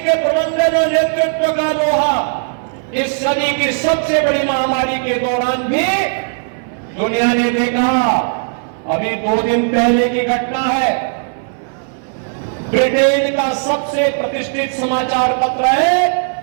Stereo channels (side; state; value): left; silent; 59 dB below the other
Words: प्रबंधन और नेतृत्व का लोहा इस सदी की सबसे बड़ी महामारी के दौरान भी दुनिया ने देखा। अभी 2 दिन पहले की घटना है, ब्रिटेन का सबसे प्रतिष्ठित समाचार पत्र है